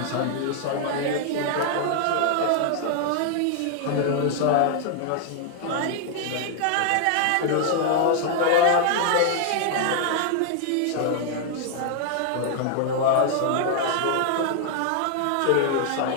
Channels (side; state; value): both; different; correlation 0.00